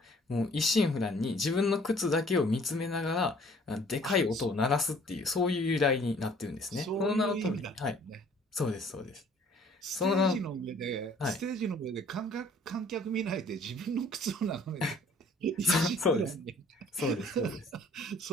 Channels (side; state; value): both; normal; correlation 0.56